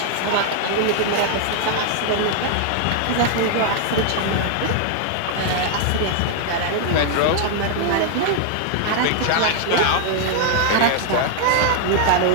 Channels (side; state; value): both; different; correlation 0.00